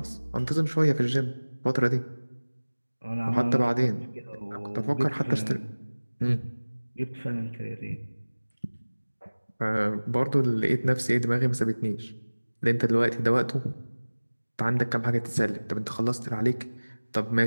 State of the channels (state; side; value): inverted; both; correlation -1.00